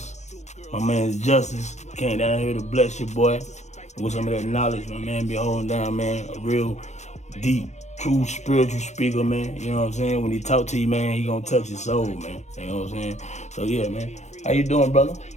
My man Og Justice came down here to bless your boy with some of that knowledge, my man. Be holding down, man, a real deep, true spiritual speaker, man. You know what I'm saying? When he talk to you, man, he gonna touch your soul, man. You know what I'm saying? So yeah, man. How you doing, brother?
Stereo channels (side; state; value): right; late; 0.33 ms